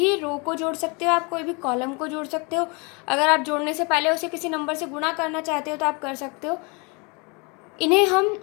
रो को जोड़ सकते हो आप, कोई भी कॉलम को जोड़ सकते हो। अगर आप जोड़ने से पहले उसे किसी नंबर से गुणा करना चाहते हो तो आप कर सकते हो। इन्हें हम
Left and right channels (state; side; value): quieter; right; 30.9 dB